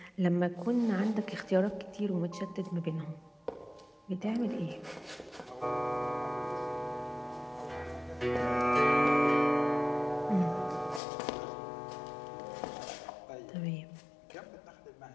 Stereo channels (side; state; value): right; drops out; at 11.0 s